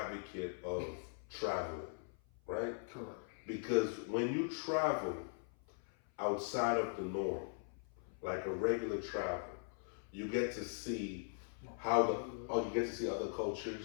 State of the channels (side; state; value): right; silent; 51 dB below the other